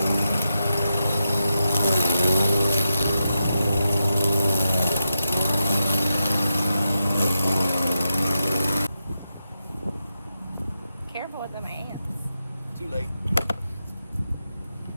Careful with them ants. Too late.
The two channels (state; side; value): inverted; both; correlation -0.87